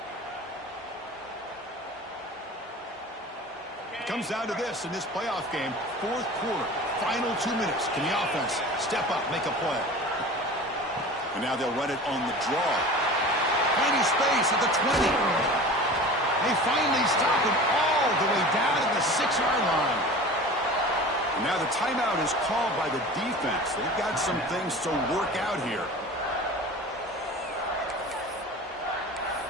It comes down to this in this playoff game. Fourth quarter, final 2 minutes. Can the offense step up, make a play? And now they'll run it on the draw. Finding space at the 20. They finally stop him all the way down to the 6-yard line. And now the timeout is called by the defense. They've got some things to work out here.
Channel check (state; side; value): normal; both; correlation 0.37